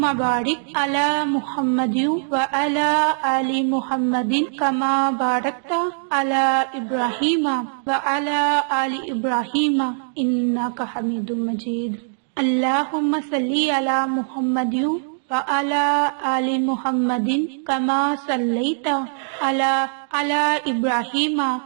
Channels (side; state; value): left; silent; digital silence